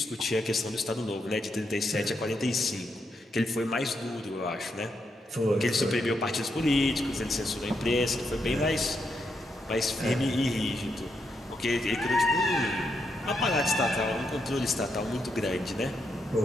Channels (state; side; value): normal; both; correlation 0.81